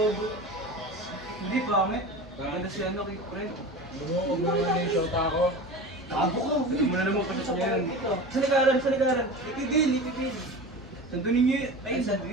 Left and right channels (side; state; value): both; normal; correlation 0.32